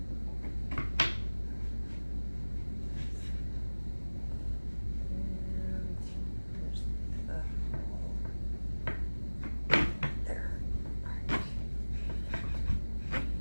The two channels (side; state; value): both; inverted; correlation -1.00